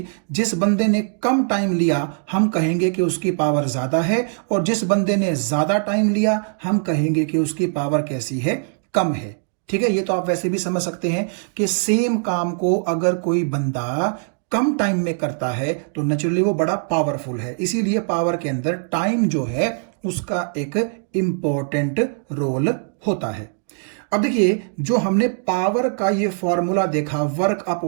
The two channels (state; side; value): silent; left; digital silence